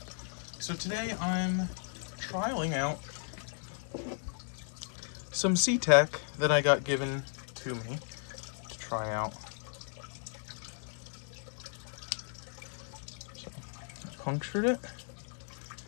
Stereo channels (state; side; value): silent; right; 54 dB below the other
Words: So today I'm trialing out some sea tack that I got given to me to try out. So I punctured it.